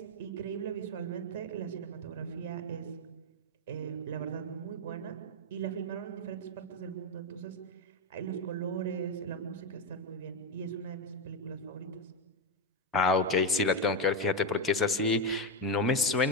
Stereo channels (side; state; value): both; normal; correlation 0.08